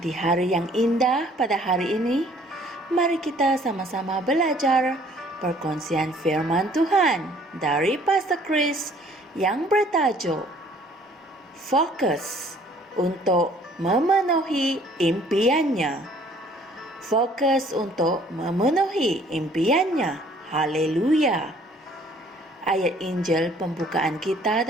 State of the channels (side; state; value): both; normal; correlation 0.57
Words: hari yang indah pada hari ini, mari kita sama-sama belajar perkongsian firman Tuhan dari Pastor Chris yang bertajuk Fokus untuk memenuhi impiannya. Fokus untuk memenuhi impiannya. Haleluya. Ayat Injil pembukaan kita